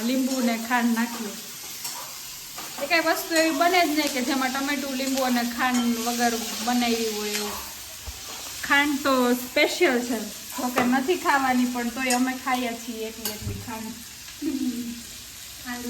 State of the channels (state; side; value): identical; both; correlation 1.00